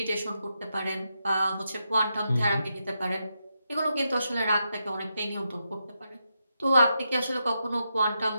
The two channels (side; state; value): both; inverted; correlation -0.84